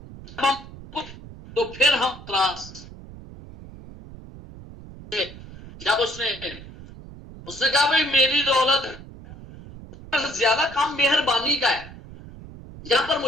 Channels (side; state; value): right; noise; rumble, 16 dB below the sound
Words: تو پھر ہم تراس, جب اس نے کہا بھئی میری دولت زیادہ کام مہربانی کا ہے, یہاں پر